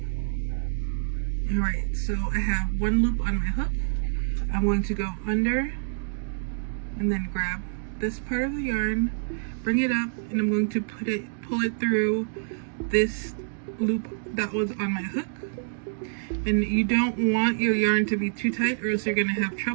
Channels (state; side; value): silent; left; digital silence